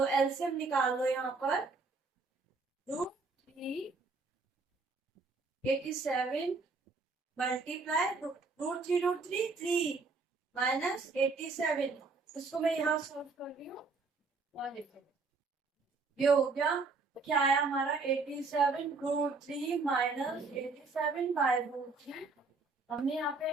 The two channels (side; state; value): left; quieter; 4.0 dB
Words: एलसीएम निकाल लो यहाँ पर, √3 87 मल्टीप्लाई √3 3 माइनस 87। इसको मैं यहाँ सॉल्व कर रही हूँ और देखो ये हो गया, क्या आया हमारा 87√3 माइनस 87/√3। हमने यहाँ पे